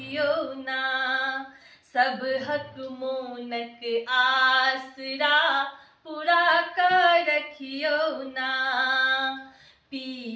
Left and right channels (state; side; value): identical; both; correlation 1.00